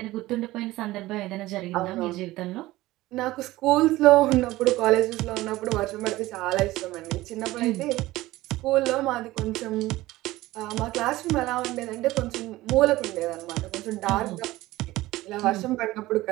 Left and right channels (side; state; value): left; quieter; 17.6 dB